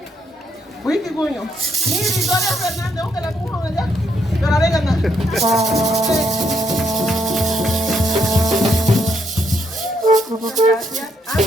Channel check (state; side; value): normal; both; correlation 0.75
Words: Wiki Guño. Ni Victoria Fernández, que la puso allá. Pero ahora gana. Gracias.